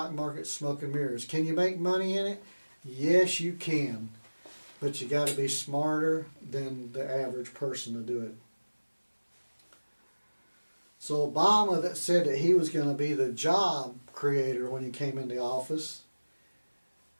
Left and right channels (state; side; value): inverted; both; correlation -1.00